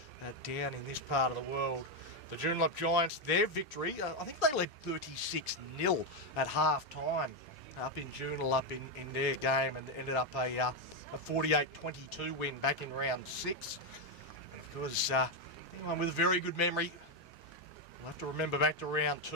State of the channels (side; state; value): both; normal; correlation 0.05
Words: down in this part of the world. The Joondalup Giants, their victory, I think they led 36-0 at half-time up in Joondalup in their game, and ended up a 48-22 win back in round 6. And of course, anyone with a very good memory will have to remember back to round